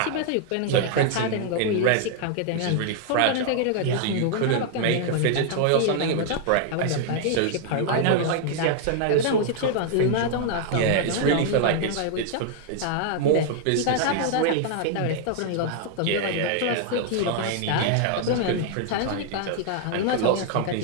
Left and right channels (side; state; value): both; different; correlation 0.00